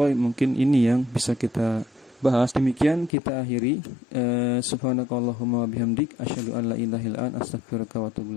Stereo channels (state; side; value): drops out; right; at 3.1 s